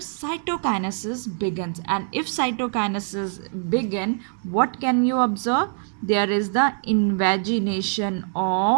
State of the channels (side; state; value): left; silent; 60 dB below the other